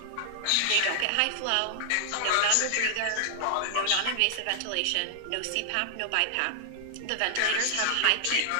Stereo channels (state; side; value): different; both; correlation -0.01